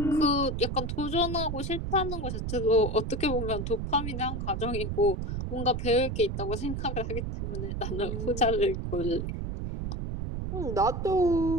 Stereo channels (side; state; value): right; noise; rumble, 4 dB below the sound